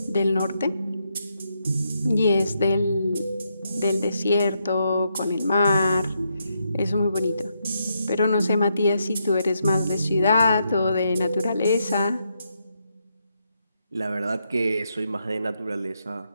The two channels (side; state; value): both; inverted; correlation -0.81